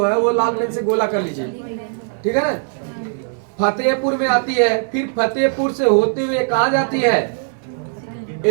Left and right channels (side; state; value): left; silent; 65 dB below the other